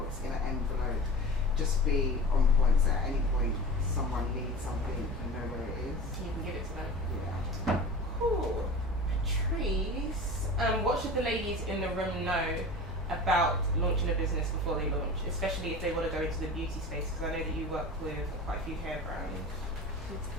it's in an envelope. Just be on point, so at any point someone needs something and know where it is. You can give it to them. Yeah. Cool. Patrice, what should the ladies in the room know about launching a business before they launch, especially if they want to go into the beauty space? Because I know that you work with quite a few hair brands.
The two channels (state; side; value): normal; both; correlation 0.34